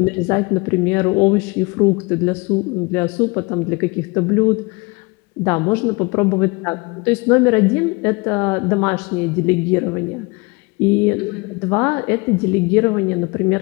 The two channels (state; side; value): quieter; right; 27.3 dB